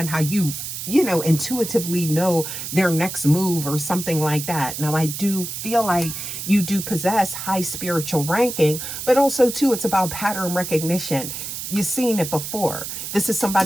how you intuitively know their next move or something like that. Now, I do feel like you do possess high spiritual ranking, but also too, it's about pattern recognition. You've seen it before. This is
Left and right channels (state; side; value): noise; right; hiss, 7 dB below the sound